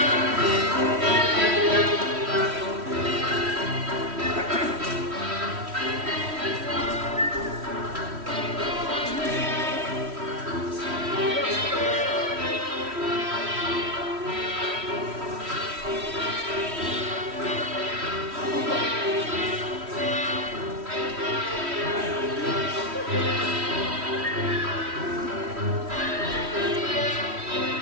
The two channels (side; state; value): left; late; 3.1 ms